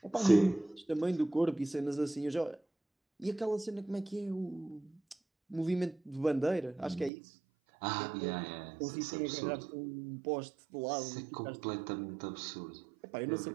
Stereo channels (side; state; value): left; drops out; at 7.1 s